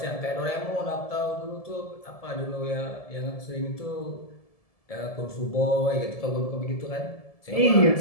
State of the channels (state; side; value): late; right; 1.7 ms